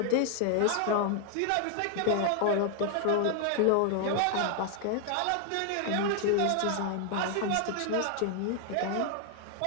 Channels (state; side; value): different; both; correlation 0.00